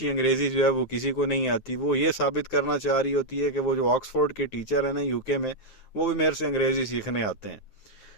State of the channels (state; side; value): late; right; 9.6 ms